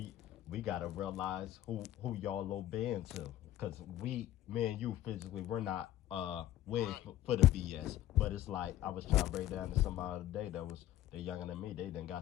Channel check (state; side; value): quieter; right; 13.4 dB